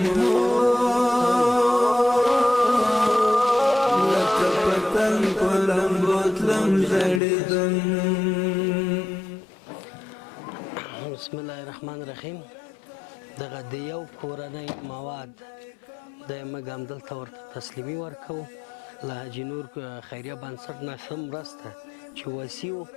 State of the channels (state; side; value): drops out; right; at 7.2 s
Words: لکه پتنگ پلم بوتلم جڑی دم. بسم الله الرحمن الرحیم. دغه د یو کورنۍ مواد د موږ همدلته ورته تسلیمي ورکوو له حاجي نور خیریه بنسټ نه ښه مرسته چې وسیع و